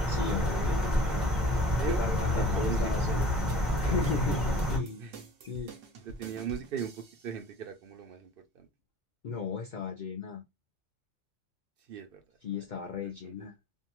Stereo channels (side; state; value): both; normal; correlation 0.48